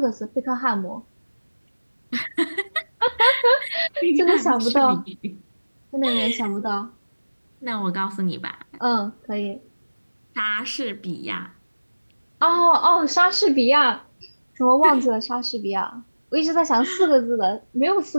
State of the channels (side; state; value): both; inverted; correlation -1.00